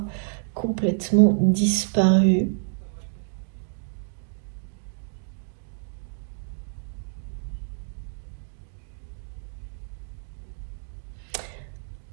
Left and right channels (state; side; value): silent; left; 60 dB below the other